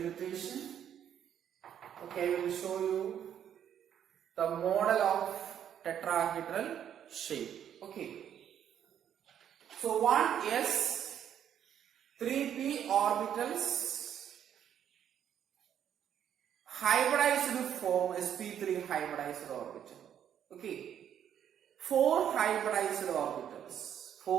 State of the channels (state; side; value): quieter; left; 9.5 dB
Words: Okay, I will show you the model of tetrahedral shape. Okay. So 1s, 3p orbitals hybridized to form sp3 hybridized orbital. Okay. 4 hybridized orbitals.